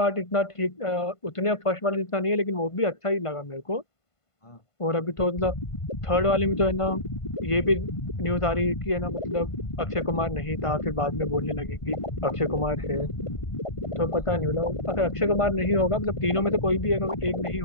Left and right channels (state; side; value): late; right; 1.5 ms